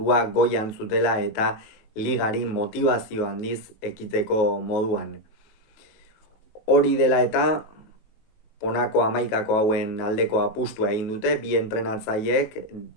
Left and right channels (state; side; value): late; right; 19 ms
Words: goian zutela eta ligari motivazio handiz ekiteko moduan. Hori dela eta honako 11 hauen aldeko apustua egin dute, bi entrenatzaileek,